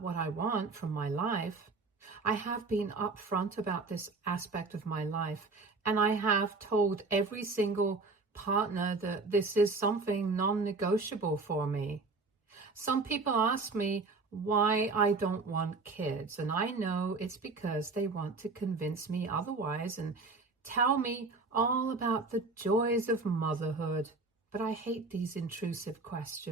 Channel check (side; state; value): left; quieter; 3.8 dB